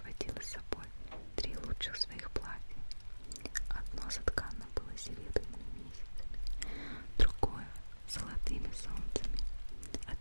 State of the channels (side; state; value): both; inverted; correlation -1.00